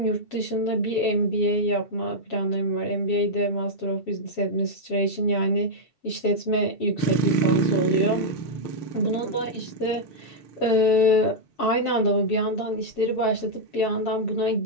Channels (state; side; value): late; right; 7.2 ms